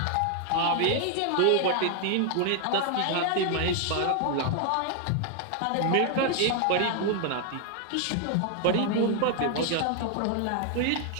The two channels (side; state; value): both; different; correlation 0.00